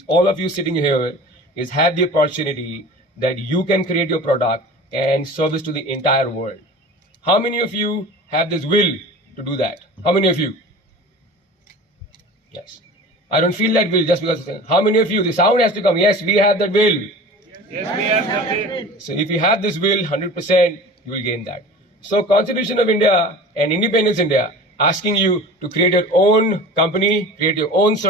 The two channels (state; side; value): normal; both; correlation 0.38